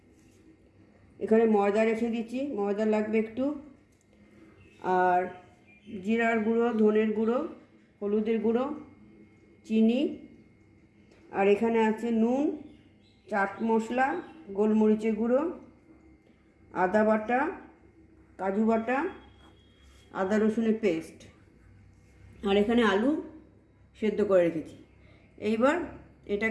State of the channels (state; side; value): identical; both; correlation 1.00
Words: এখানে ময়দা রেখে দিচ্ছি, ময়দা লাগবে একটু, আর জিরার গুঁড়ো, ধনের গুঁড়ো, হলুদের গুঁড়ো, চিনি, আর এখানে আছে নুন, চাট মশলা, গোলমরিচের গুঁড়ো, আদা বাটা, কাজু বাটা, আদা রসুনের পেস্ট, আর এখানে আলু সেদ্ধ করে রেখেছি। এইবার